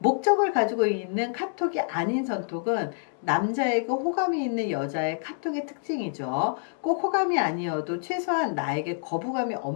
가지고 있는 카톡이 아닌 선톡은 남자에게 호감이 있는 여자의 카톡의 특징이죠. 꼭 호감이 아니어도 최소한 나에게 거부감이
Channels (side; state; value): right; silent; digital silence